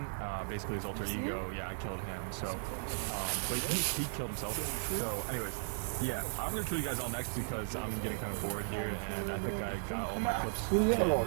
Basically his alter ego. Yeah, I killed him. So, but he killed himself. So anyways, yeah, I'm gonna kill you guys all next because I'm getting kind of bored here, and I think I got all my clips. Hold And on,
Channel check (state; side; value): silent; left; digital silence